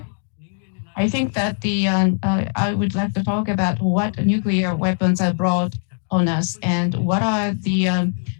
I think that I would like to talk about what nuclear weapons are brought on us and what are the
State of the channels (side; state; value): right; silent; 60 dB below the other